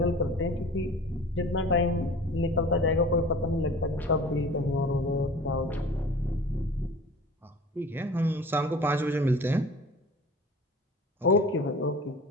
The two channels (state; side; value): normal; both; correlation 0.42